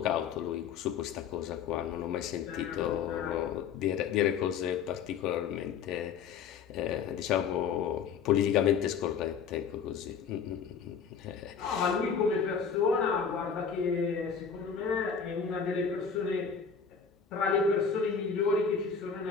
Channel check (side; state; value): right; quieter; 6.5 dB